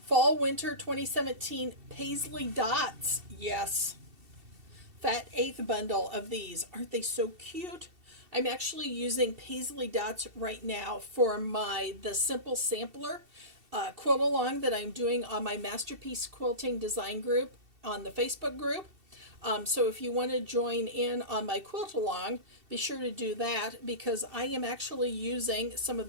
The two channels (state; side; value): late; left; 2.7 ms